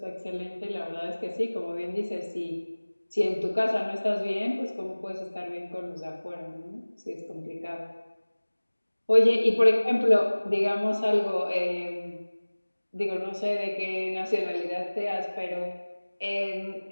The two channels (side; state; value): both; inverted; correlation -1.00